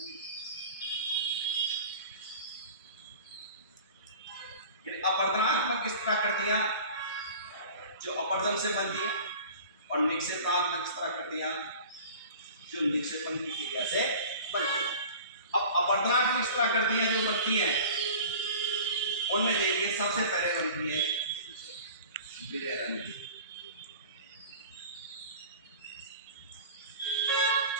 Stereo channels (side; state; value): both; inverted; correlation -0.41